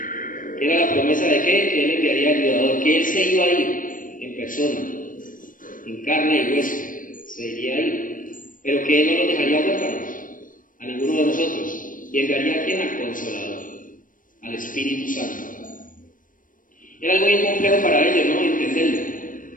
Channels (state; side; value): late; right; 0.39 ms